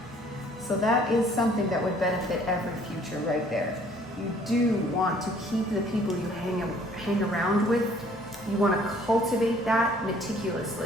So that is something that would benefit every future right there. You do want to keep the people you hang around with. You want to cultivate that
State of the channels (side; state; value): both; normal; correlation 0.58